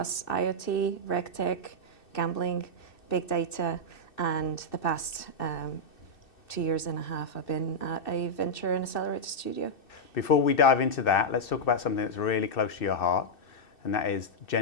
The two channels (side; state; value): right; late; 2.6 ms